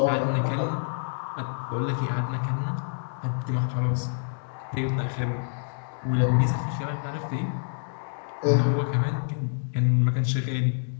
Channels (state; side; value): silent; right; digital silence